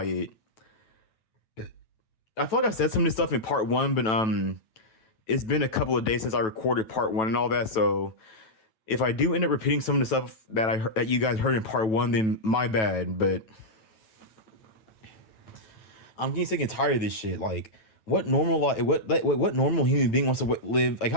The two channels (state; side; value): late; right; 9.1 ms